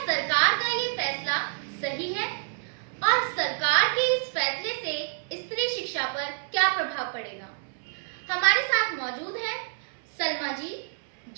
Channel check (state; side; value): silent; left; 59 dB below the other